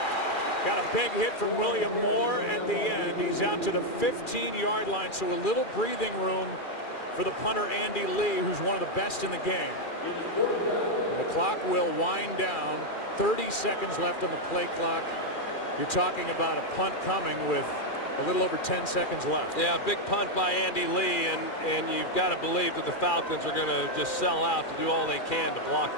Got a big hit from William Moore at the end. He's out to the 15-yard line, so a little breathing room for the punter Andy Lee, who's one of the best in the game. And the clock will wind down. 30 seconds left on the play clock. You're talking about a punt coming with a little over 10 seconds left. Yeah, big punt by Andy Lee, and you've got to believe that the Falcons are going to just sell out to do all they can to block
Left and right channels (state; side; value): late; right; 2.4 ms